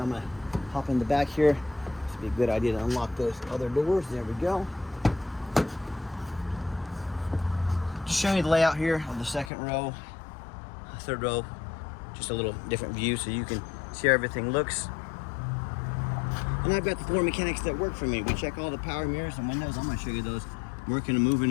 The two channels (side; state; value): right; drops out; at 9.5 s